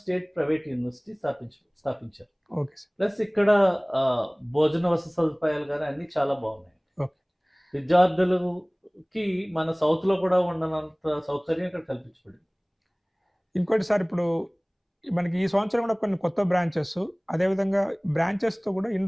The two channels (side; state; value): both; identical; correlation 1.00